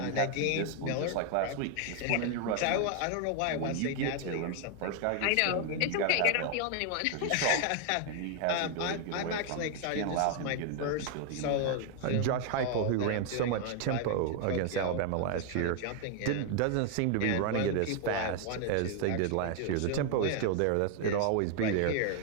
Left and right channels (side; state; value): both; different; correlation 0.00